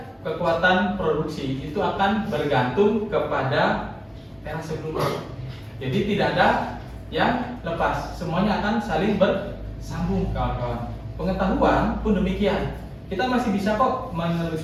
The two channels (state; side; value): identical; both; correlation 1.00